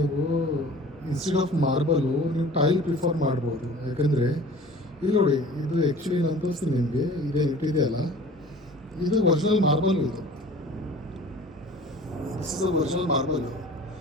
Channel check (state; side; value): normal; both; correlation 0.44